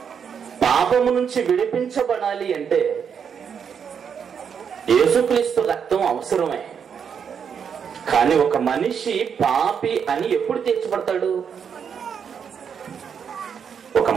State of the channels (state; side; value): quieter; left; 7.2 dB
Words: పాపము నుంచి విడిపించబడాలి అంటే యేసుక్రీస్తు రక్తం అవసరమే. కానీ ఒక మనిషి పాపి అని ఎప్పుడు తీర్చబడతాడు? ఒక